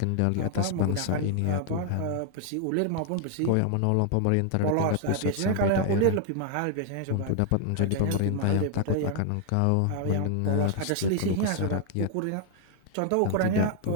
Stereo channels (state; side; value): different; both; correlation 0.00